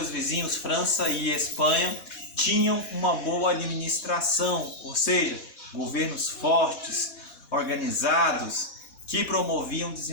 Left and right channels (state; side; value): late; right; 4.1 ms